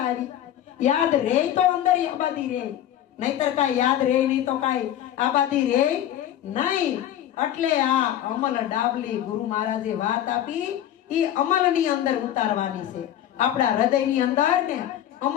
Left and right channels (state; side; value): quieter; right; 11.4 dB